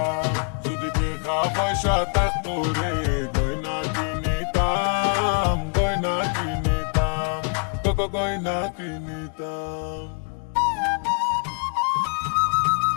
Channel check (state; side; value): quieter; right; 38.4 dB